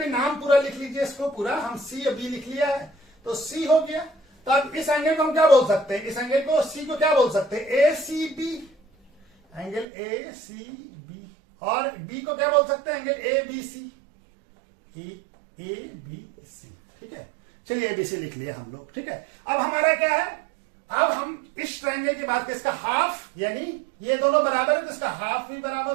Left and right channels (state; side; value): drops out; left; at 9.9 s